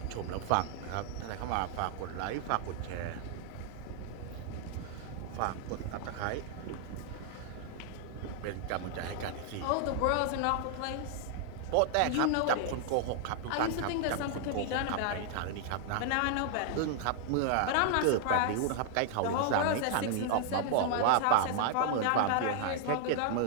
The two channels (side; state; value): both; different; correlation 0.00